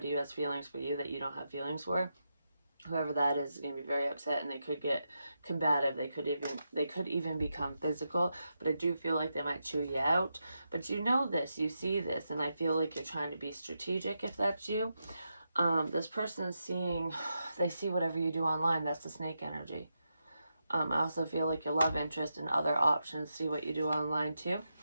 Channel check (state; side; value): inverted; both; correlation -0.86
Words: who has feelings for you that you don't have feelings for. Whoever that is going to be very upset, and they could get combative. They could even become physical. But I do feel like they might chew you out. But you know this, you see this, and I feel like you're trying to be strategic if that's you. This person is seeing, they see whatever you do online. That's the snake energy. I also feel like your love interest and other options see what you do online too.